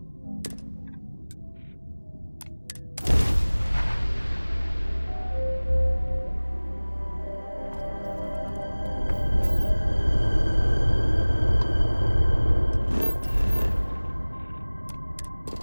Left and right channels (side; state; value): both; inverted; correlation -1.00